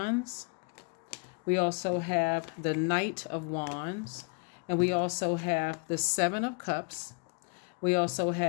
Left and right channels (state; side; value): quieter; right; 36.2 dB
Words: We also have the Knight of Wands. And we also have the Seven of Cups. We also